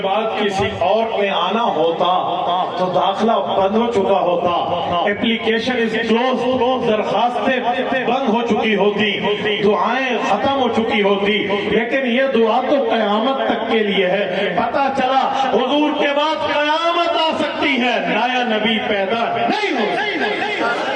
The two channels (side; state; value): both; identical; correlation 1.00